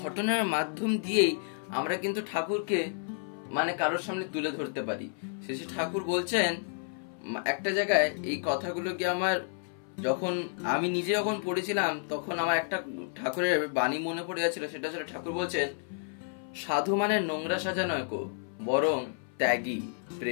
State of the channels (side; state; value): right; silent; 57 dB below the other